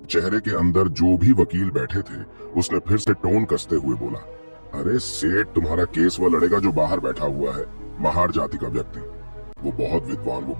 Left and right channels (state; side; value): inverted; both; correlation -1.00